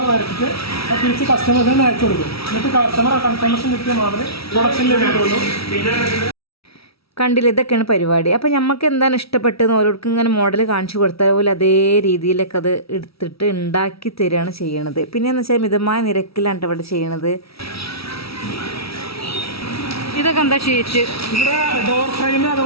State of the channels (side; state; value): right; late; 0.76 ms